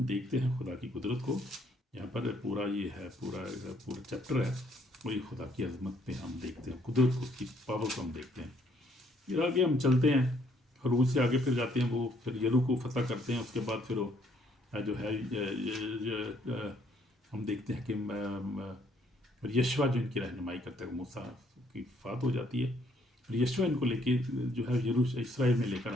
دیکھتے ہیں خدا کی قدرت کو، یہاں پر پورا یہ ہے، پورا چیپٹر ہے، وہی خدا کی عظمت پہ ہم دیکھتے ہیں، قدرت کو، اس کی پاور کو ہم دیکھتے ہیں۔ پھر آگے ہم چلتے ہیں، خروج سے آگے پھر جاتے ہیں، وہ پھر یرو کو فتح کرتے ہیں، اس کے بعد پھر وہ جو ہے ہم دیکھتے ہیں کہ یشوع جو ان کی رہنمائی کرتا ہے، موسیٰ کی وفات ہو جاتی ہے، اور یشوع ان کو لے کے جو ہے اسرائیل میں لے کر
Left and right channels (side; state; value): both; normal; correlation 0.67